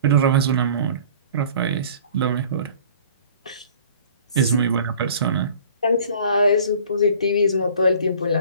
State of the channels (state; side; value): inverted; both; correlation -0.48